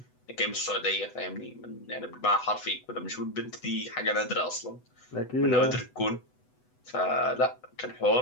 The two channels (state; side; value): late; right; 8.0 ms